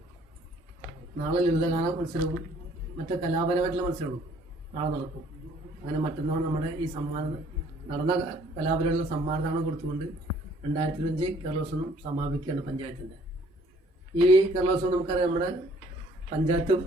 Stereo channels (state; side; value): normal; both; correlation 0.59